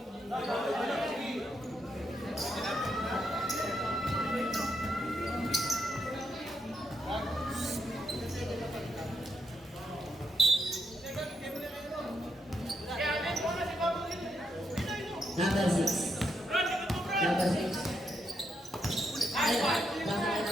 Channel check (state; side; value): normal; both; correlation 0.80